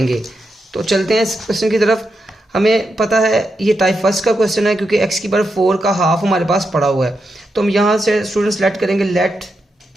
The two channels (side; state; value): both; normal; correlation 0.85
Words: तो चलते हैं इस क्वेश्चन की तरफ। हमें पता है ये टाइप फर्स्ट का क्वेश्चन है क्योंकि एक्स की पावर 4 का हाफ हमारे पास पड़ा हुआ है। तो हम यहाँ से स्टूडेंट्स लेट करेंगे let